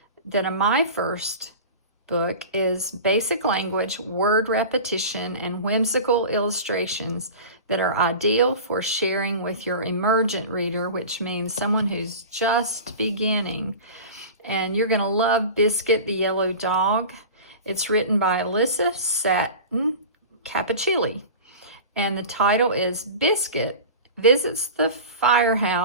that a My First book is basic language, word repetition, and whimsical illustrations that are ideal for sharing with your emergent reader, which means someone who's just beginning. And you're going to love Biscuit the Yellow Dog. It's written by Alyssa Satin Cappuccilli. And the title is Biscuit Visits the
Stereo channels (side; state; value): both; inverted; correlation -0.34